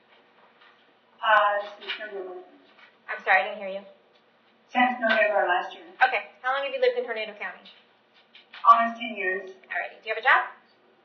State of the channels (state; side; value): identical; both; correlation 1.00